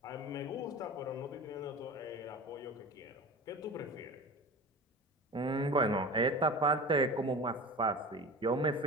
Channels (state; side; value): normal; both; correlation 0.33